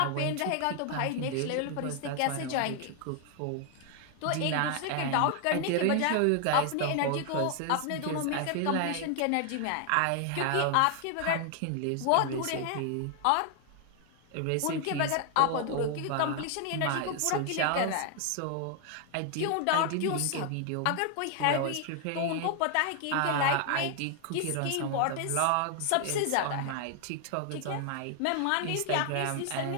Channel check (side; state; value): both; different; correlation 0.00